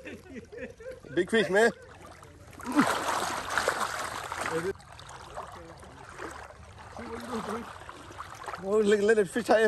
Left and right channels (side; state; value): both; identical; correlation 1.00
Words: Big fish, man. Oh, let it fish